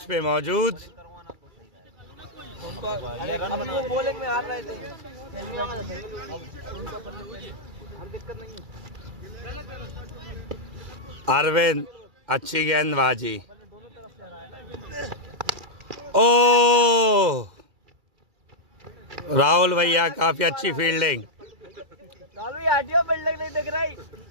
पे मौजूद। बॉलिंग में हार रहे थे। अरविंद अच्छी गेंदबाजी। ओ राहुल भैया काफी अच्छी फील्डिंग। राहुल भैया हटियो, बिल्डिंग नहीं दिख रही।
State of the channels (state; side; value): late; left; 2.3 ms